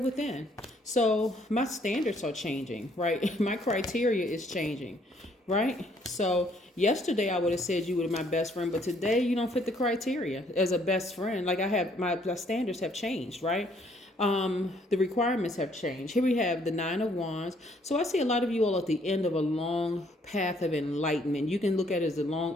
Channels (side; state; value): both; normal; correlation 0.65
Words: within. So my standards are changing, right? My criteria is changing, right? So yesterday I would have said you were my best friend, but today you don't fit the criteria as a best friend. Like, I have my standards have changed, right? The requirements have changed. Here we have the 9 of Wands. So I see a lot of you all at the end of a long path of enlightenment. You can look at it as a long,